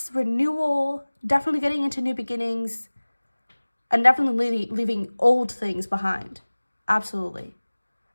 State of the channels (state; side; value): inverted; both; correlation -1.00